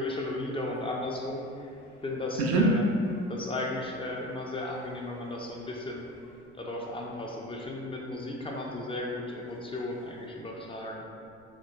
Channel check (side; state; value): right; noise; rumble, 30 dB below the sound